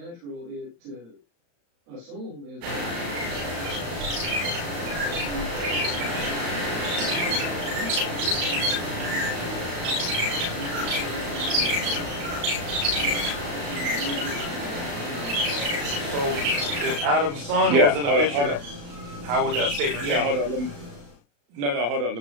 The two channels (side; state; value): left; late; 35 ms